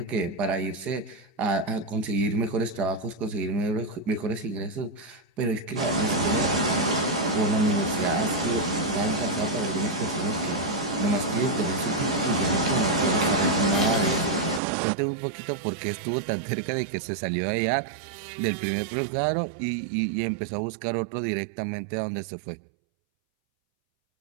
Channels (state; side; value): drops out; left; at 14.6 s